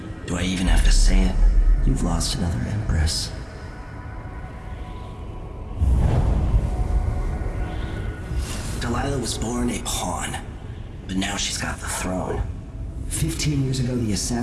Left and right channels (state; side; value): identical; both; correlation 1.00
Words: Do I even have to say it? You've lost another Empress. Delilah was born a pawn, but now she's got the throne. 15 years ago, the